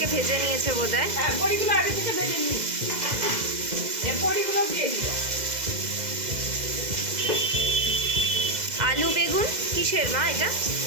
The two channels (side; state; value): left; late; 2.0 ms